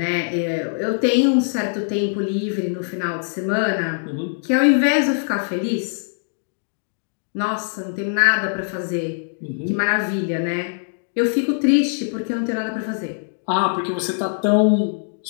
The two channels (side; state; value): right; silent; digital silence